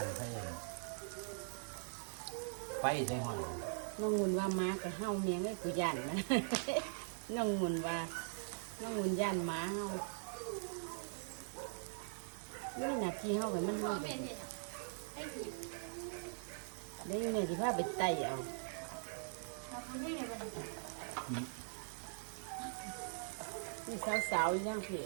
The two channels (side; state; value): left; silent; digital silence